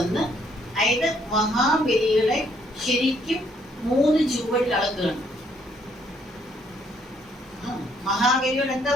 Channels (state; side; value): normal; both; correlation 0.68